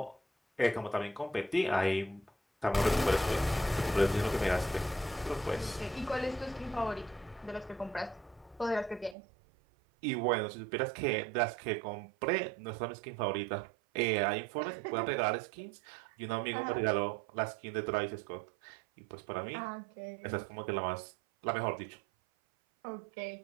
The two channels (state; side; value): drops out; left; at 9.2 s